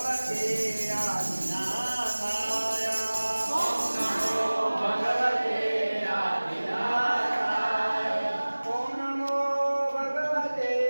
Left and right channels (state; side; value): inverted; both; correlation -1.00